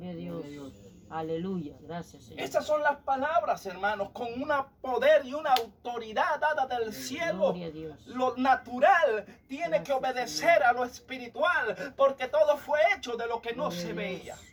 a Dios. Aleluya. Gracias, Señor. Esas son las palabras, hermanos, con un poder y una autoridad dada del cielo. Gloria a Dios. Lo natural tiene que Gracias, obedecer a lo espiritual, porque todo fue hecho de lo que no Gloria se a veía.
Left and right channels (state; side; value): identical; both; correlation 1.00